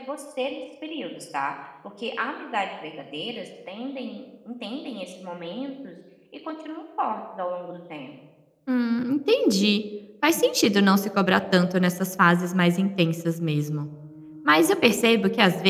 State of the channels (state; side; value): identical; both; correlation 1.00